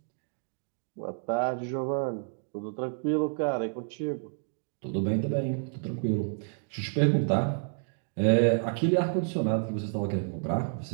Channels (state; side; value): silent; left; digital silence